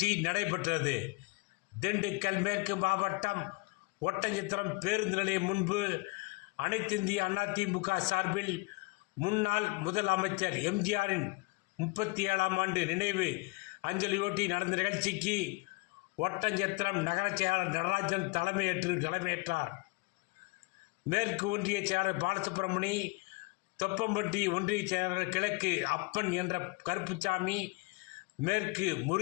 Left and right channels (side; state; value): right; quieter; 27.3 dB